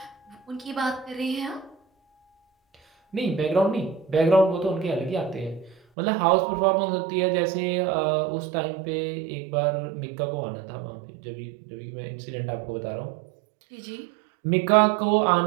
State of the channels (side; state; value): left; drops out; at 5.8 s